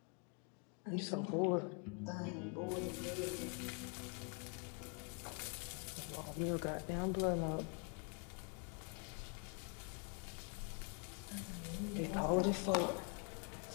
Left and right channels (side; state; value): right; quieter; 37.5 dB